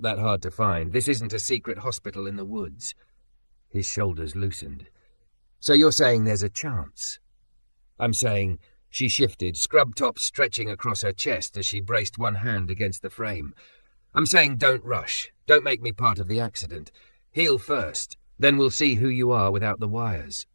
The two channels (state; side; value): inverted; both; correlation -1.00